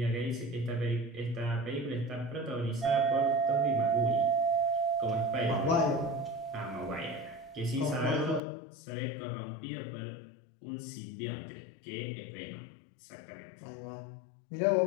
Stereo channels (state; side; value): drops out; right; at 8.4 s